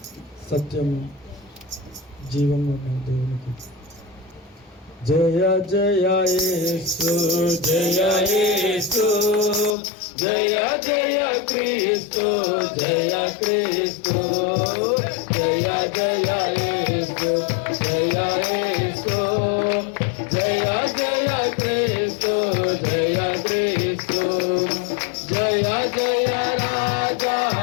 సత్యం, జీవం దేవునికి. జయ జయ యేసు, జయ యేసు, జయ జయ క్రీస్తు, జయ క్రీస్తు, జయ జయ యేసు, జయ యేసు, జయ జయ క్రీస్తు, జయ క్రీస్తు, జయ జయ రాజా,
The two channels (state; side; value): drops out; right; at 9.8 s